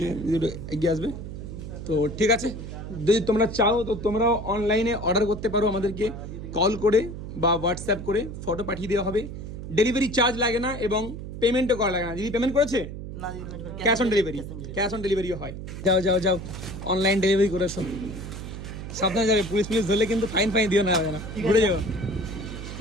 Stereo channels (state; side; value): noise; right; hum, 9 dB below the sound